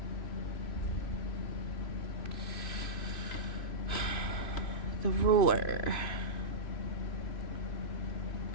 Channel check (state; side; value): late; right; 3.0 ms